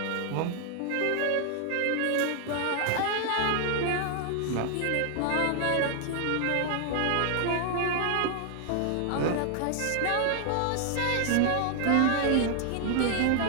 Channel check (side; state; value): both; different; correlation 0.00